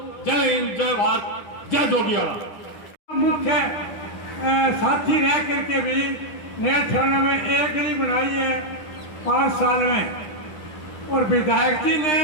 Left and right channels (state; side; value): late; right; 10 ms